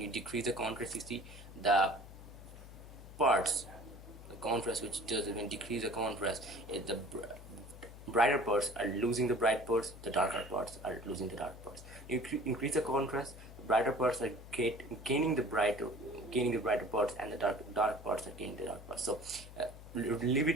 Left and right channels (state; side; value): noise; left; hum, 15 dB below the sound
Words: decrease the contrast, you see the parts, the contrast which does it. When you decrease the contrast, the brighter parts are losing the bright parts, the darker parts are losing the dark parts. You increase the contrast, the brighter parts are gaining the brighter parts, and the dark parts are gaining the dark parts. So leave